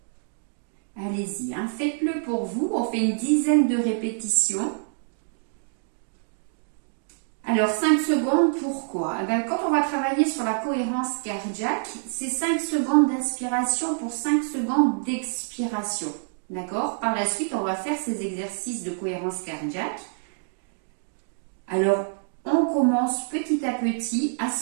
Allez-y, faites-le pour vous, on fait une dizaine de répétitions. Alors 5 secondes, pourquoi? Quand on va travailler sur la cohérence cardiaque, c'est 5 secondes d'inspiration pour 5 secondes d'expiration. D'accord? Par la suite, on va faire ces exercices de cohérence cardiaque. Alors, on commence petit à petit à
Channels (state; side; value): silent; left; digital silence